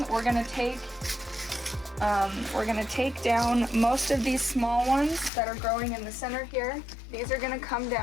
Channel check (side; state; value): right; drops out; at 5.3 s